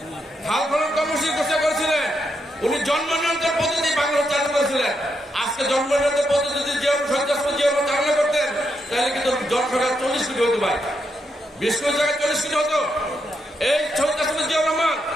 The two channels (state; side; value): normal; both; correlation 0.81